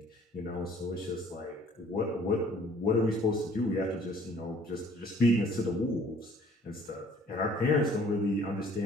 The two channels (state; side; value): normal; both; correlation 0.56